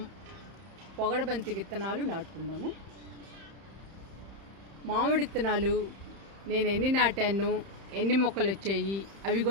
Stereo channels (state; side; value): late; left; 31 ms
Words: పొగడబంతి విత్తనాలు నాటుకుందాము. మామిడి విత్తనాలు నేను ఎన్ని నాటాను, ఎన్ని మొక్కలు వచ్చాయి అవి